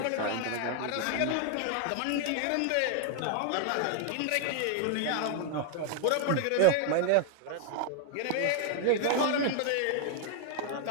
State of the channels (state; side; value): different; both; correlation 0.00